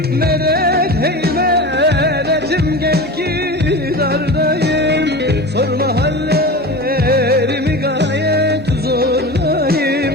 Medet hey medetim gel ki dardayım. Sorma hallerimi gayet zordayım.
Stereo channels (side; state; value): both; normal; correlation 0.30